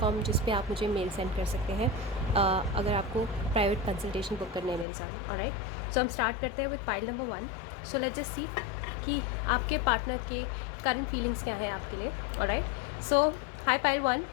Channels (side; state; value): right; drops out; at 4.9 s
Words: जिस पे आप मुझे मेल सेंड कर सकते हैं अगर आपको प्राइवेट कंसल्टेशन बुक करने है मेरे साथ. ऑलराइट, सो हम स्टार्ट करते हैं with pile number 1. So let's just see कि आपके पार्टनर के करंट फीलिंग्स क्या हैं आपके लिए. Alright, so high pile 1,